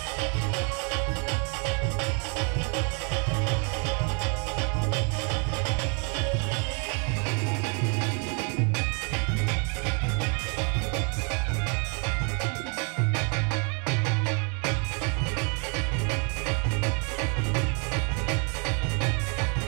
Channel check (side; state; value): left; quieter; 37.1 dB